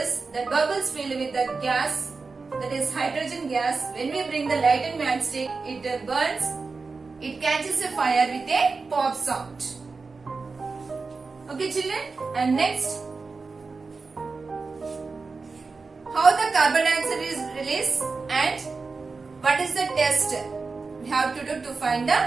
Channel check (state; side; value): quieter; left; 4.3 dB